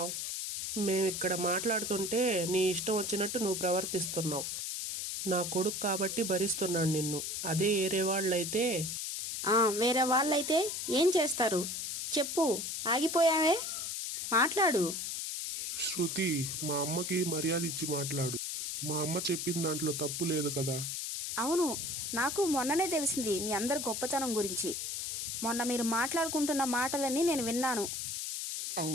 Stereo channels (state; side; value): noise; left; hiss, 3 dB below the sound